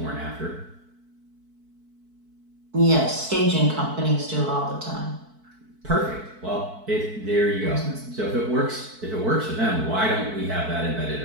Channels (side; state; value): left; late; 4.6 ms